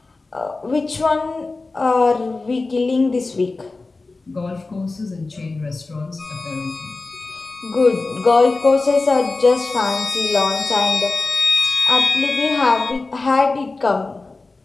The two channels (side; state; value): right; quieter; 3.6 dB